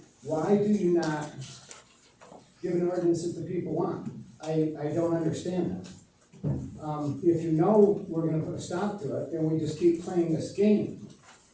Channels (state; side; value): identical; both; correlation 1.00